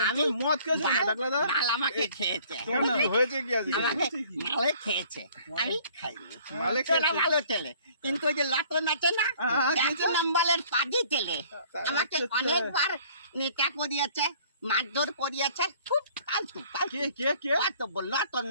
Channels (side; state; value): both; inverted; correlation -0.55